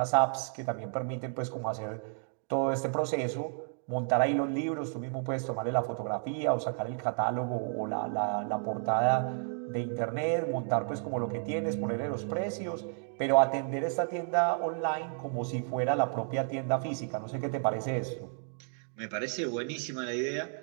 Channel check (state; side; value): silent; left; 55 dB below the other